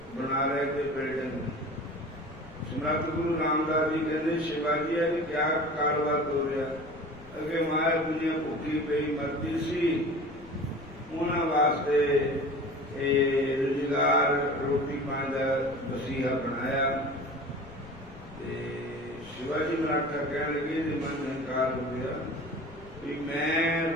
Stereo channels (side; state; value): left; noise; rumble, 19 dB below the sound